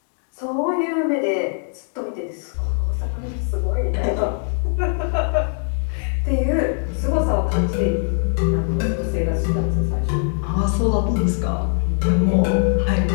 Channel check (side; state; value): right; silent; 57 dB below the other